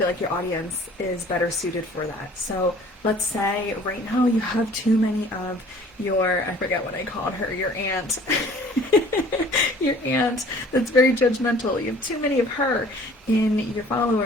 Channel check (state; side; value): normal; both; correlation 0.51